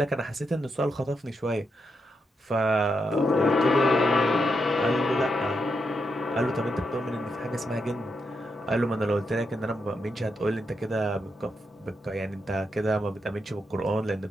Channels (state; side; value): normal; both; correlation 0.83